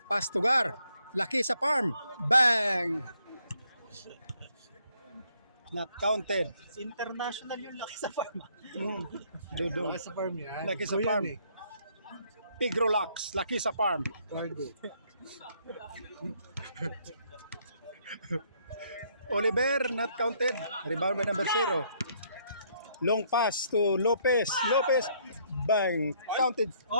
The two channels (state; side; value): inverted; both; correlation -0.68